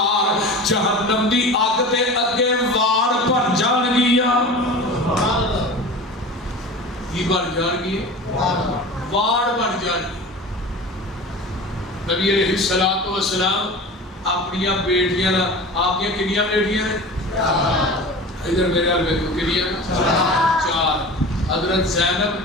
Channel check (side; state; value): both; normal; correlation 0.35